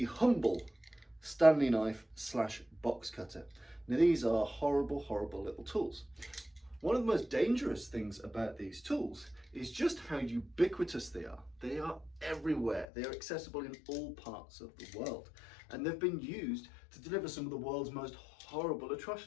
humble Stanley knife / box cutter. Now these are horrible little tools. One of the most dangerous things about these tools is just how ubiquitous they are. They are everywhere. They are accessible in all parts of the world. And they've been used to deliver some of the world's most horrible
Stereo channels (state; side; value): drops out; right; at 12.9 s